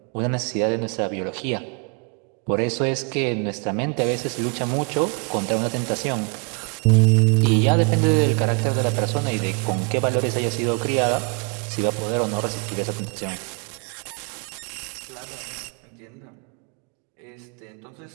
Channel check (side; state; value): left; quieter; 34.1 dB